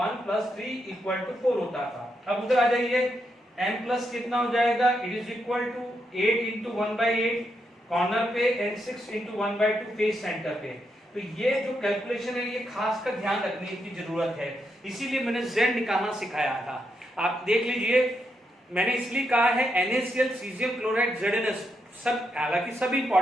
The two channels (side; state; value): both; normal; correlation 0.81